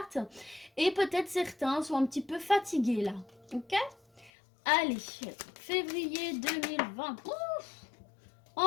Et peut-être certains sont un petit peu fatigués là, ok? Allez, février 2020, ouf!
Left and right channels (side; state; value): right; drops out; at 4.3 s